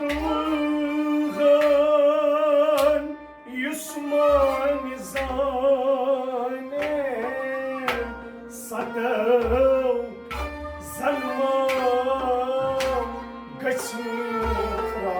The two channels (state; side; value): identical; both; correlation 1.00